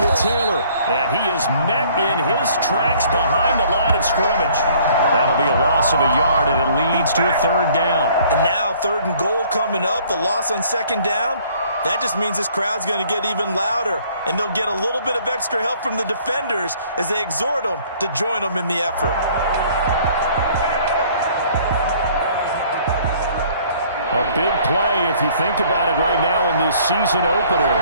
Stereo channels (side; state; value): both; inverted; correlation -0.57